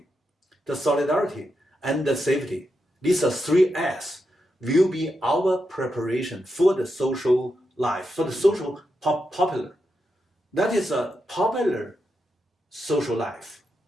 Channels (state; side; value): normal; both; correlation 0.85